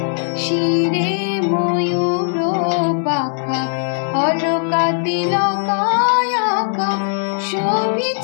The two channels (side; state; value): right; silent; 65 dB below the other